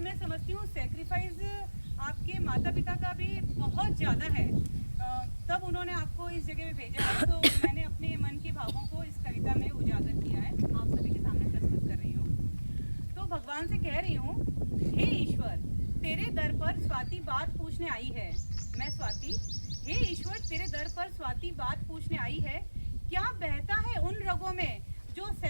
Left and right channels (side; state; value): both; inverted; correlation -1.00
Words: मैं समझती हूँ सेक्रीफाइस आपके माता पिता का भी बहुत ज़्यादा है। तब उन्होंने आपको इस जगह पे भेजा है, तो मैंने अपने मन के भावों को इस कविता में उजागर किया है, आप सभी के सामने प्रस्तुत कर रही हूँ। तो भगवान से कह रही हूँ, हे ईश्वर, तेरे दर पर स्वाति बात पूछने आई है। मैं स्वाति, हे ईश्वर, तेरे दर पर स्वाति बात पूछने आई है। क्या बहता है उन रगों में जो